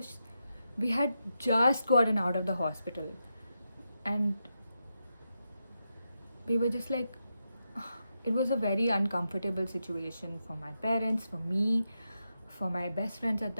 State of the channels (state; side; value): inverted; both; correlation -0.86